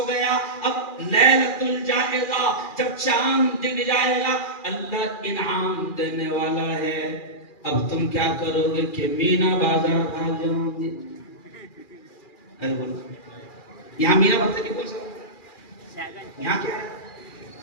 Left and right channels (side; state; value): right; late; 2.4 ms